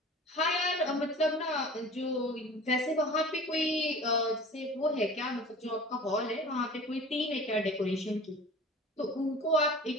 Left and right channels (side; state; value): both; normal; correlation 0.41